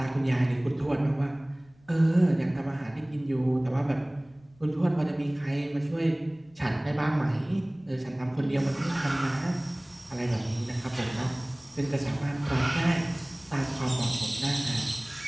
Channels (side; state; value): left; noise; rumble, 30 dB below the sound